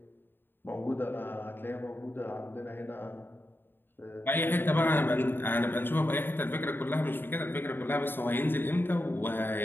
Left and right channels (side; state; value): right; late; 0.098 ms